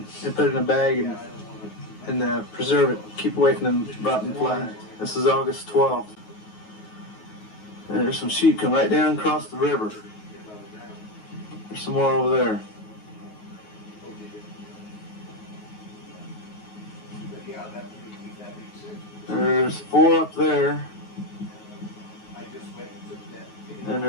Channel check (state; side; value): late; right; 9.4 ms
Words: put it in a bag and preserve it. Keep away from them rotten flies. This is August 12th. And there's some sheep come right down across the river. There's some more over there. There's 4 up there. And